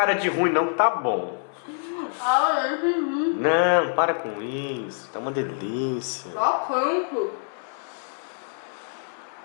de ruim não, que tá bom. Ah, eu entendi. Não, para com isso, tá uma delícia. Só quanto?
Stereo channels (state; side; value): silent; right; 56 dB below the other